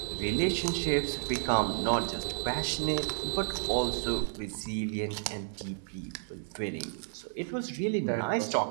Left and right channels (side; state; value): left; silent; digital silence